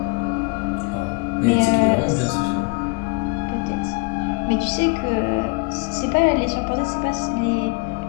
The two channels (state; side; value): quieter; right; 29.3 dB